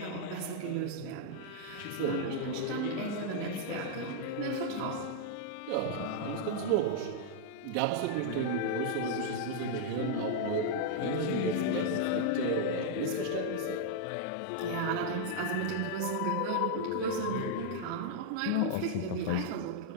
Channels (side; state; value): both; different; correlation -0.01